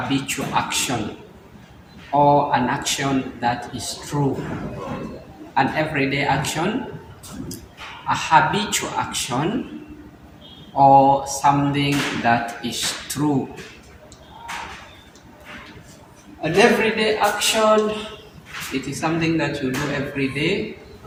action or an action that is true. An everyday action, a habitual action, or something that is true. An everyday action, it is something that you do every day.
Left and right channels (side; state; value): both; identical; correlation 1.00